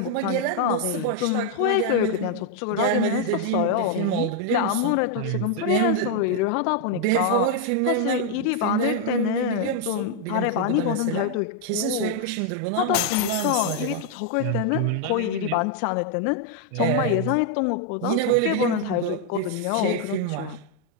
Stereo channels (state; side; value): different; both; correlation 0.00